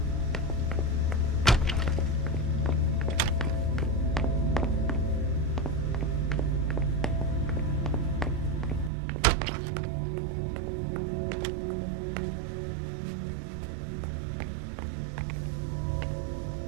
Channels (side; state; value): left; drops out; at 8.9 s